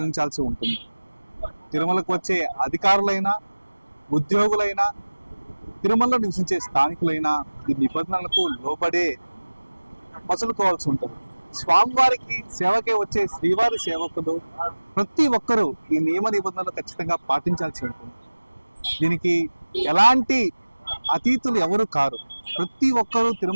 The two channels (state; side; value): inverted; both; correlation -1.00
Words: ఉంటుంది. తిరుమలకు వచ్చే అధికారులైనా ఉద్యోగులైనా తిరుమలలో నివసించే స్థానికులైనా ఈ నిబంధనలకు లోబడే మసులుకోవాల్సి ఉంటుంది. స్వామివారికి సేవకే వచ్చే శ్రీవారి సేవకులు ప్రతి ఒక్కరూ ఈ నియమ నిబంధనలు ఖచ్చితంగా పాటించాల్సి ఉంటుంది. దీనికి ఎలాంటి అతీతులు ఎవరు కారు. ప్రతి ఒక్కరూ